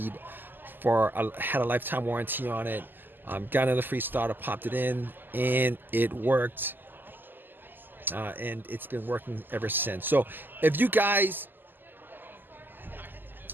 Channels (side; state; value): left; late; 0.091 ms